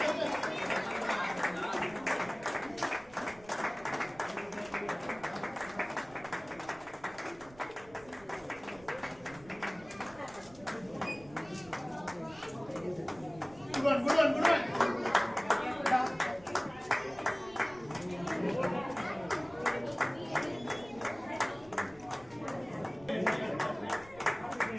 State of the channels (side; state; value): right; noise; rumble, 23 dB below the sound